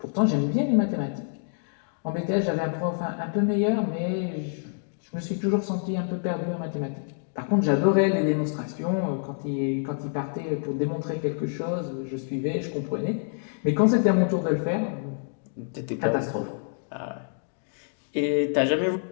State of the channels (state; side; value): silent; right; digital silence